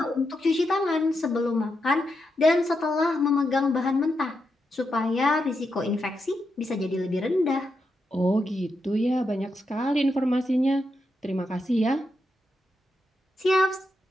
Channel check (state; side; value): normal; both; correlation 0.85